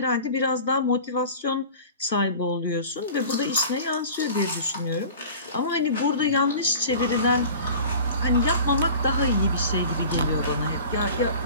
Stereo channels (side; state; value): both; inverted; correlation -0.40